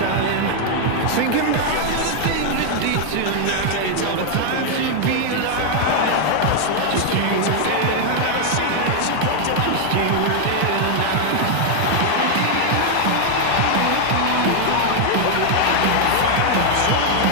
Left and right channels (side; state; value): both; different; correlation 0.00